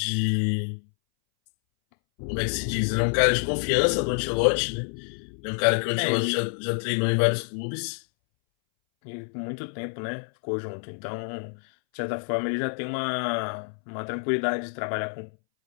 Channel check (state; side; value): silent; right; 60 dB below the other